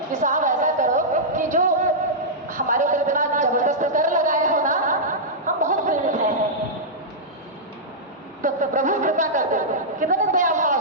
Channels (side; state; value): both; normal; correlation -0.11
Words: कि साहब ऐसा करो कि जो हमारे ऊपर इतना जबरदस्त कर लगाए हो ना, हम बहुत प्रेरित हैं, तो प्रभु कृपा कर दो। कितने दया भाव